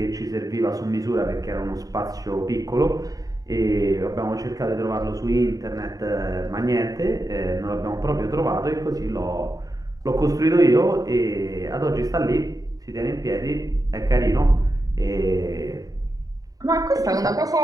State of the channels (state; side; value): late; left; 0.18 ms